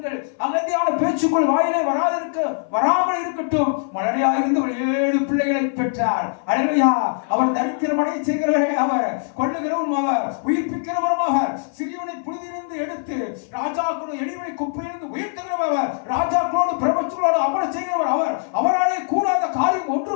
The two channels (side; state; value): right; silent; 58 dB below the other